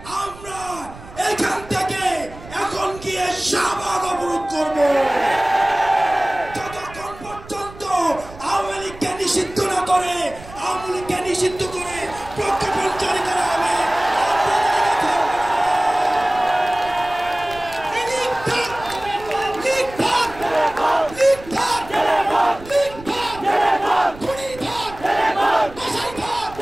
আমরা এখান থেকে এখন গিয়ে শাহবাগ অবরোধ করবো যতক্ষণ পর্যন্ত আওয়ামী লীগকে নিষিদ্ধ না করে, আওয়ামী লীগকে নিষিদ্ধ করে প্রজ্ঞাপন জারি করা হবে।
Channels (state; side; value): noise; right; rumble, 17 dB below the sound